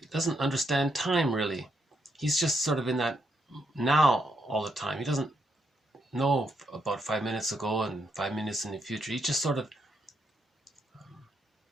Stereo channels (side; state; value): both; normal; correlation 0.79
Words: doesn't understand time really. He's just sort of in that now all the time. He doesn't know about 5 minutes ago and 5 minutes in the future. He's just sort of